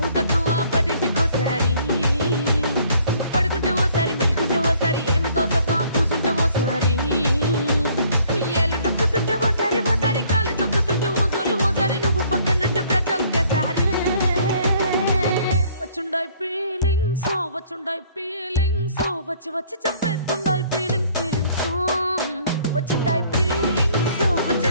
వచ్చి చంపేస్తుండాయి ఫీలింగ్స్ ఫీలింగ్స్ వచ్చిండాయి ఫీలింగ్స్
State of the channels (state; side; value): inverted; both; correlation -0.60